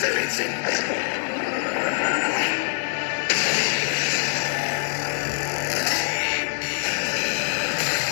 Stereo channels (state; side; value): silent; right; digital silence